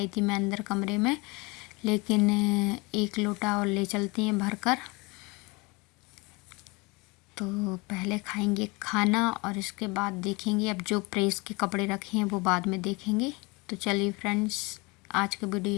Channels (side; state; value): right; quieter; 26.3 dB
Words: थी मैं अंदर कमरे में, लेकिन 1 लोटा और ले चलती हैं भर कर। तो पहले खाएंगे खाना और इसके बाद देखेंगे, अब जो प्रेस के कपड़े रखे हैं वो बाद में देखेंगे। तो चलिए फ्रेंड्स, आज का वीडियो